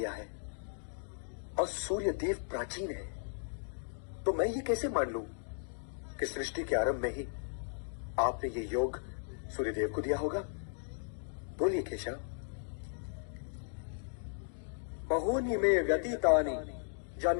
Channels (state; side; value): silent; right; digital silence